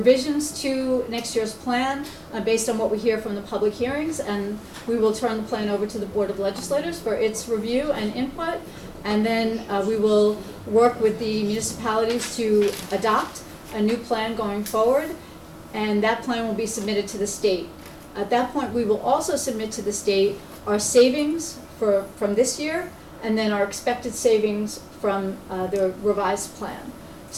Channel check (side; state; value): both; identical; correlation 1.00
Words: to next year's plan, based on what we hear from the public hearings, and we will turn the plan over to the Board of Legislators for its review and input, and then we will work with the municipalities to adopt a new plan going forward, and that plan will be submitted to the state. At that point, we will also submit to the state our savings from this year, and then our expected savings from the revised plan.